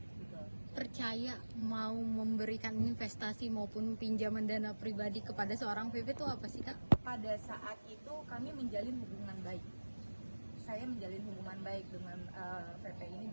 Gitu. Percaya mau memberikan investasi maupun pinjaman dana pribadi kepada seorang VP itu apa sih Kak? Pada saat itu kami menjalin hubungan baik. Saya menjalin hubungan baik dengan VP ini,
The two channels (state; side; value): inverted; both; correlation -1.00